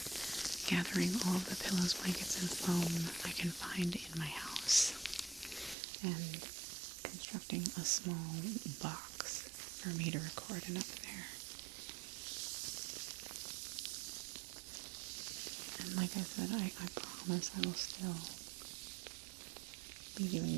gathering all of the pillows, blankets, and foam I can find in my house and constructing a small box for me to record in up there. And like I said, I promise I will still be doing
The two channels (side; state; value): left; drops out; at 5.8 s